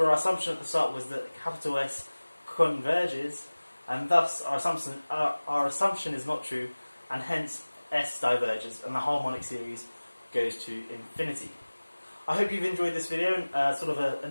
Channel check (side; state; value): both; inverted; correlation -1.00